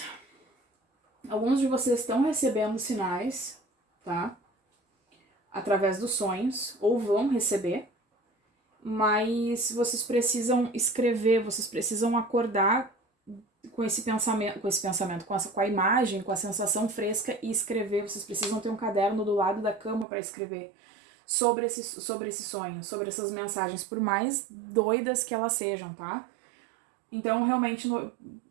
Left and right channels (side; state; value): left; drops out; at 20.1 s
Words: Alguns de vocês estão recebendo sinais, tá? Através dos sonhos, ou vão receber, mas vocês precisam escrever, vocês precisam acordar com esse pensamento, com a imagem, com a sensação fresca e escrever. Vocês precisam ter um caderno do lado da cama para escrever sobre esse sonho, sobre essas mensagens, por mais doidas que elas sejam, tá? Então, realmente,